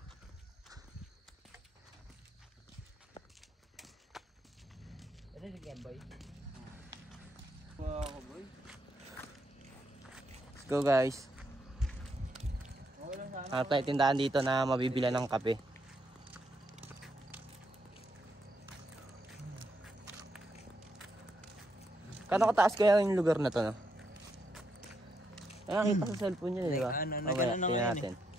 Ano yung game, boy? Boy. Let's go, guys. Hanap tayo tindahan dito na mabibila ng kape. Kano kataas kaya yung lugar na to, no? Ay, nakita sa cellphone niya, di ba? Nagano na ngayon natin.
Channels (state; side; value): normal; both; correlation 0.79